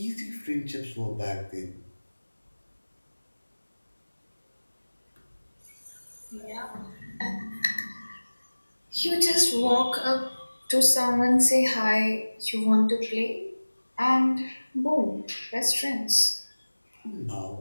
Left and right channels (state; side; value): inverted; both; correlation -1.00